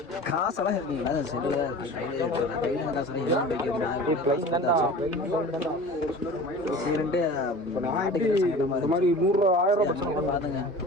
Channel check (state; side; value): normal; both; correlation 0.39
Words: காசெல்லாம் இருக்குங்களா செல்லுல கையில் காசெல்லாம் சரின்ட்டு பாத்துங்க